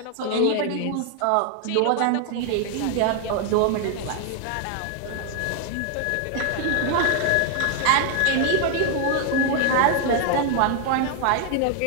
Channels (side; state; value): both; different; correlation 0.00